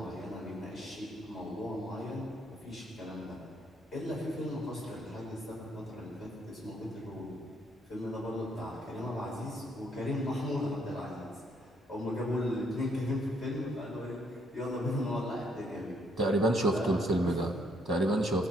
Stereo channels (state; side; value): normal; both; correlation 0.70